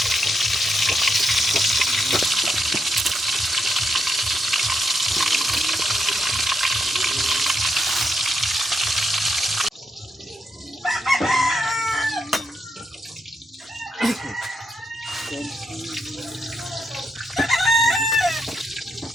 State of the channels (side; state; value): both; normal; correlation 0.81